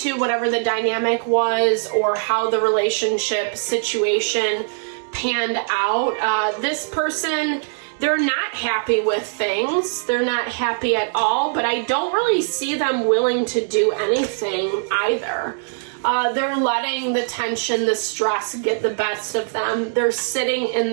whatever the dynamic was or how the relationship situation panned out, this person, they're not happy with things. They're not happy at all, but I don't really see them willing to do anything either. They're letting the tension, the stress get the best of them. They're sitting in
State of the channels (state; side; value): silent; left; 65 dB below the other